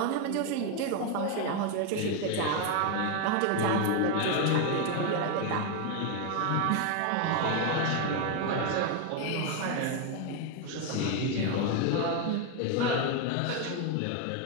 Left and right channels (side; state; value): both; different; correlation 0.01